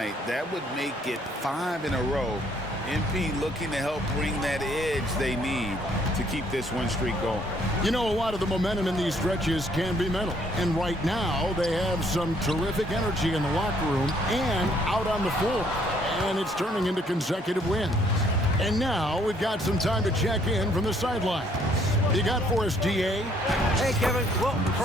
that would make it 5 in a row. MP looking to help bring that edge they need to keep this win streak going. You know, a lot of the momentum in these stretches can be mental. And right now, they have some terrific energy in the locker room and out on the floor. And it's turning into consecutive wins. And now we've got some time to check in from the sideline. You got for us, DA? Hey, Kevin. Well,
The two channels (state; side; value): normal; both; correlation 0.65